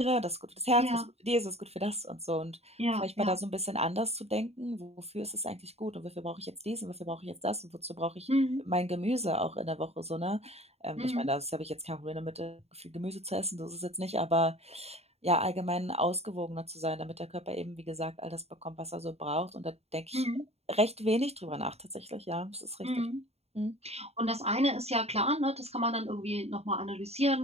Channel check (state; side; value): late; left; 0.30 ms